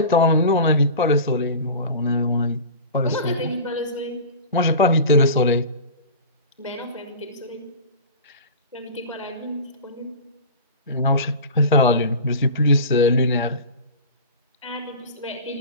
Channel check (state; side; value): inverted; both; correlation -0.33